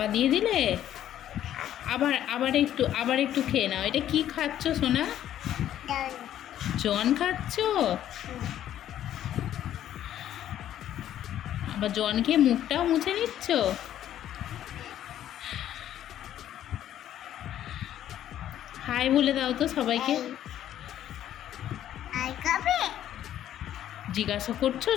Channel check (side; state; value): right; quieter; 11.5 dB